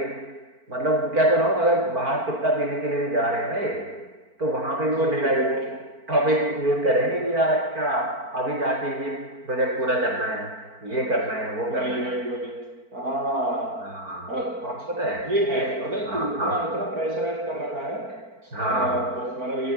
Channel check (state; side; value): late; left; 4.5 ms